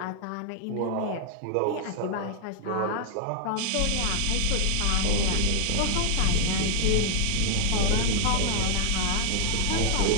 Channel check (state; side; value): different; both; correlation 0.00